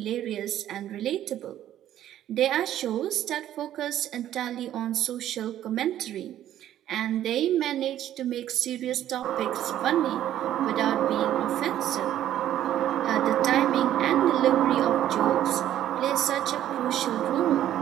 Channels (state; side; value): quieter; left; 11.9 dB